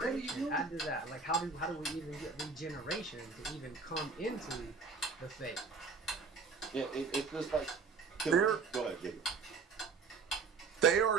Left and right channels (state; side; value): quieter; left; 4.8 dB